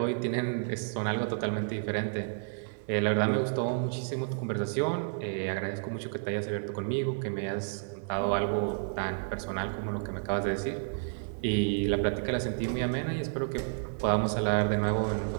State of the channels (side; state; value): left; silent; digital silence